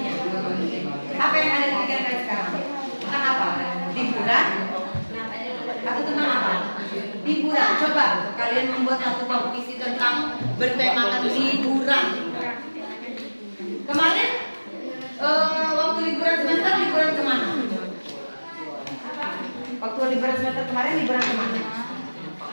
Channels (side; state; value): both; inverted; correlation -1.00